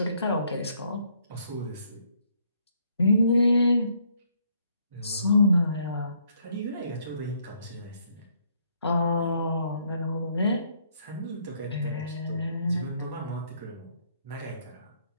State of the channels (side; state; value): both; inverted; correlation -0.69